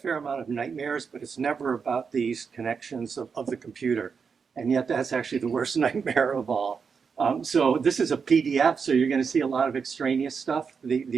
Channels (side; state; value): left; quieter; 5.8 dB